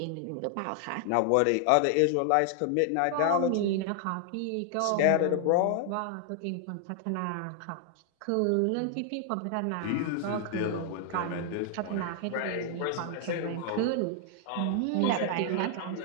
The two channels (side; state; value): both; different; correlation 0.00